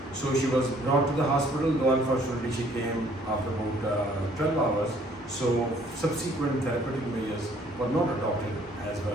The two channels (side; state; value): both; normal; correlation 0.60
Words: So she was brought to the hospital, though unfortunately she came after about 12 hours. So subsequent therapeutic measures were not adopted as